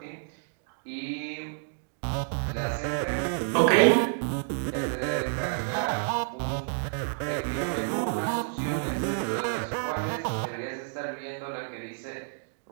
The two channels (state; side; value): silent; left; digital silence